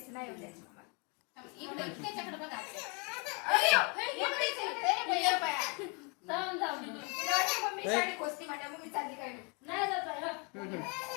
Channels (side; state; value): right; quieter; 31.5 dB